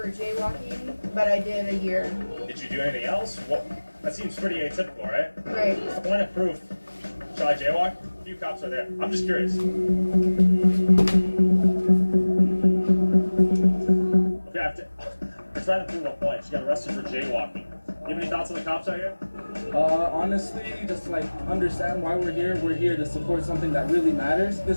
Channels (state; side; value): inverted; both; correlation -1.00